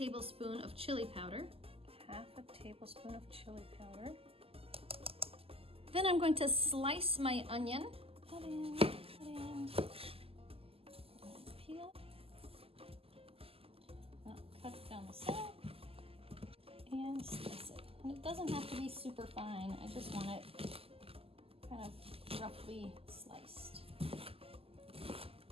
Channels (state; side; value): late; left; 0.28 ms